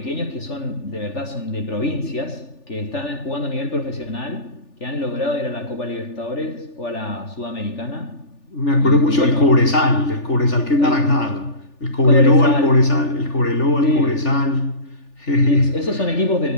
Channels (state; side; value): late; right; 3.4 ms